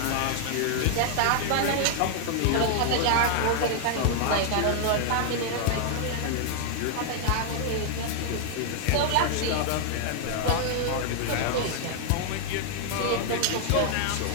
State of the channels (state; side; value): different; both; correlation 0.00